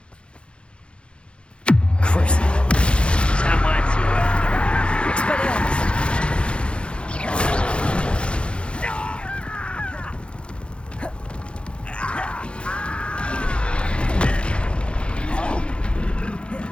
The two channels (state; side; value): late; right; 0.057 ms